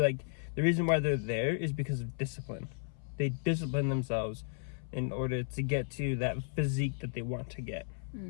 the reason why they're there is because of discipline. They discipline themselves in order to get to that physique that they want to get.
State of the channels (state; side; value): silent; right; 55 dB below the other